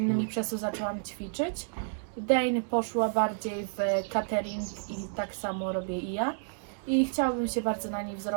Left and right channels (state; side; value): silent; left; digital silence